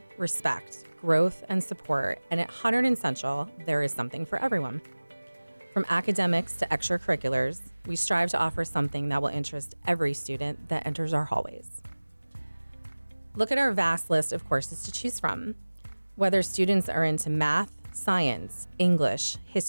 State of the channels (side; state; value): both; inverted; correlation -1.00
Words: respect, growth, and support. And at Hunterdon Central, there is something for everyone. From academics to extracurriculars, we strive to offer something that will interest every student that enters our hallways. Look at our vast list of courses to choose from. Whether students are into math, science, English,